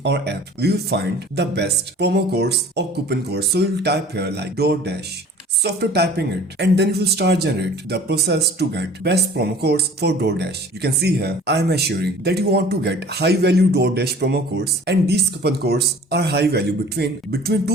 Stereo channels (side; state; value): both; normal; correlation 0.48